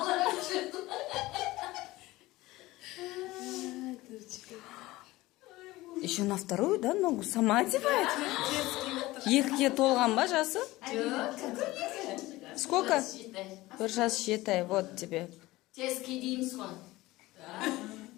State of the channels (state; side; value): quieter; right; 18.8 dB